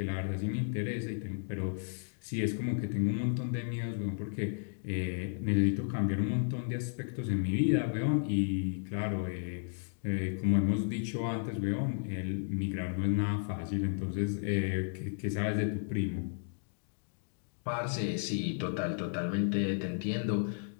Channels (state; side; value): silent; right; digital silence